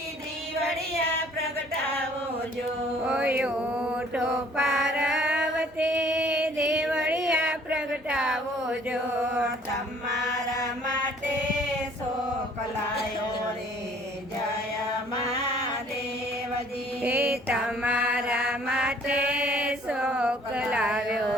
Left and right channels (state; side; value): normal; both; correlation 0.57